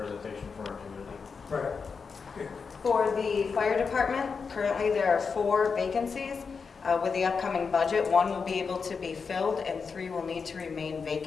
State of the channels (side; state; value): right; quieter; 5.4 dB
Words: from our community. Right. For the fire department, currently there are 4 vacancies. With the upcoming budget, 1 will be able to be filled and 3 will need to remain